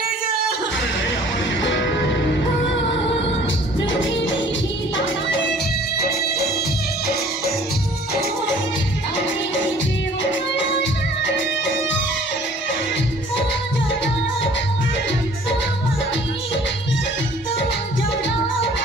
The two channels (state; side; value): normal; both; correlation 0.53